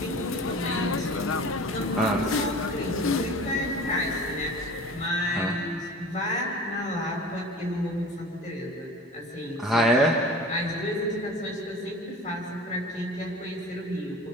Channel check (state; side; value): normal; both; correlation 0.39